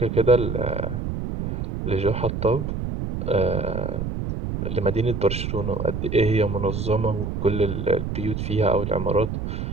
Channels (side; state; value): right; noise; rumble, 4 dB below the sound